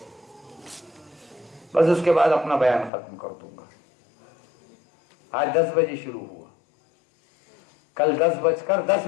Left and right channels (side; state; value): right; drops out; at 2.9 s